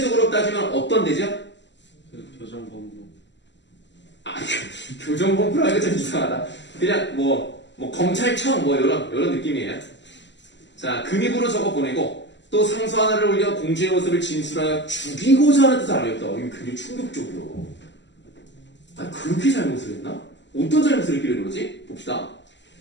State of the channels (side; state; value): right; late; 0.52 ms